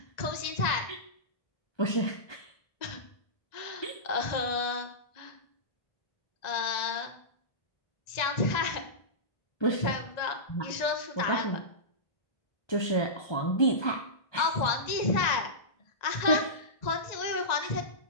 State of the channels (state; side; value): late; right; 1.9 ms